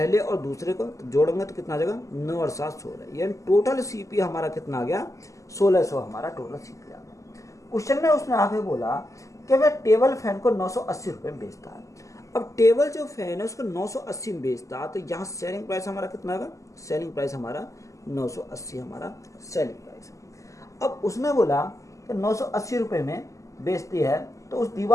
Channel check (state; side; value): late; right; 0.16 ms